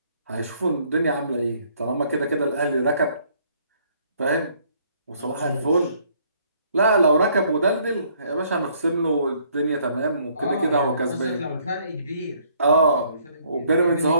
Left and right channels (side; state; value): both; inverted; correlation -0.65